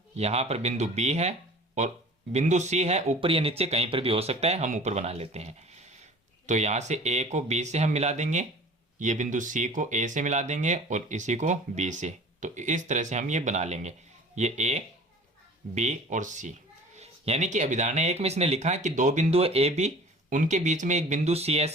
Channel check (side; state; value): both; normal; correlation 0.44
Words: यहां पर बिंदु बी है और बिंदु सी है, ऊपर या नीचे कहीं पर भी हो सकता है, हम ऊपर बना लेते हैं। तो यहां से ए को बी से हम मिला देंगे, ये बिंदु सी को ए से मिला देंगे और इसी को बी से। तो इस तरह से हम ये बना लेंगे, ये ए बी और सी। यानी कि अभिधारणा 1 में इसने लिखा है कि 2 बिंदु ए बी, उनके बीच में एक बिंदु सी